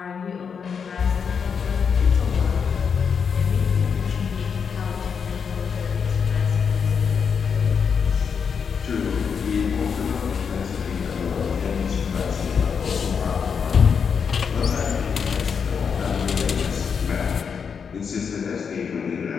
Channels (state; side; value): quieter; right; 6.4 dB